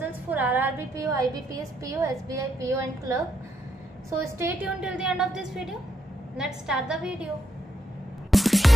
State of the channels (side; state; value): both; normal; correlation 0.78